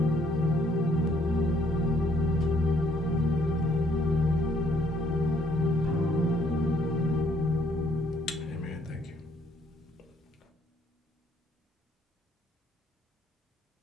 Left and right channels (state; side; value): normal; both; correlation 0.66